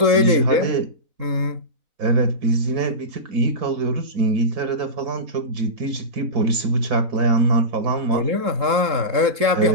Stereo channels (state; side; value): late; left; 3.8 ms